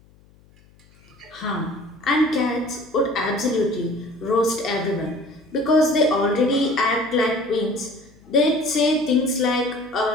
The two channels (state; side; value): noise; left; hum, 29 dB below the sound